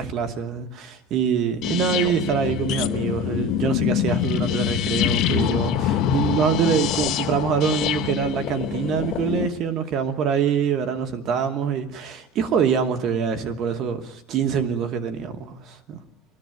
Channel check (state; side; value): normal; both; correlation 0.34